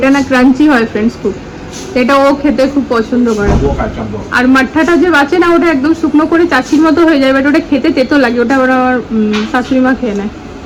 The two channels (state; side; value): identical; both; correlation 1.00